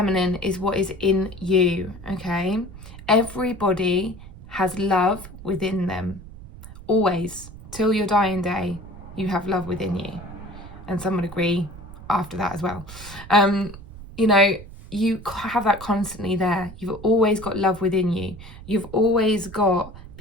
is what is in you, okay? Everybody has love within them. Always, till your dying day, you have love within you. And some would agree after that as well. You have that constantly there. You've always got love within you. You've always got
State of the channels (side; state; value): right; noise; rumble, 16 dB below the sound